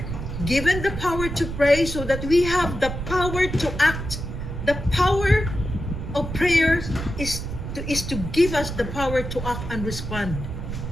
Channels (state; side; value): noise; right; rumble, 6 dB below the sound